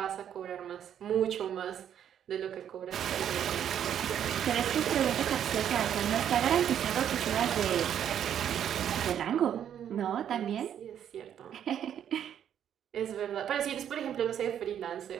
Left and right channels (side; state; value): left; quieter; 9.6 dB